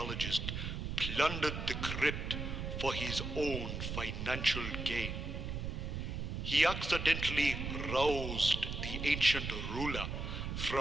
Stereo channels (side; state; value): right; noise; rumble, 4 dB below the sound